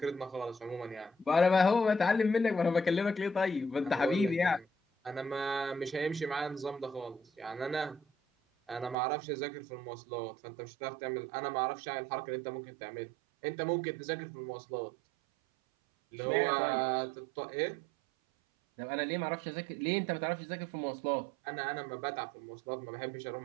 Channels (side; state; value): left; drops out; at 9.0 s